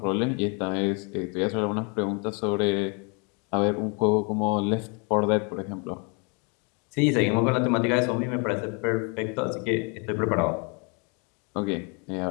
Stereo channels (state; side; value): quieter; right; 34.4 dB